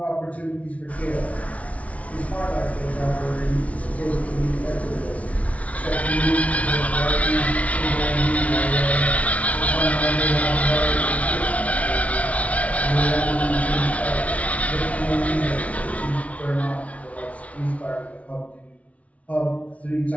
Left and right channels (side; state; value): right; late; 0.066 ms